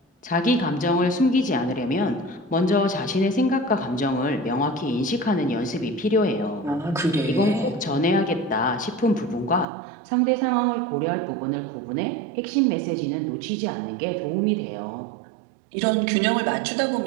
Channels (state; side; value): drops out; left; at 9.7 s